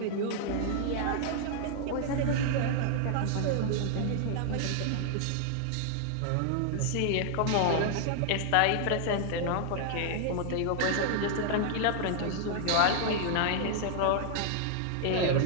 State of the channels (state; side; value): different; both; correlation 0.00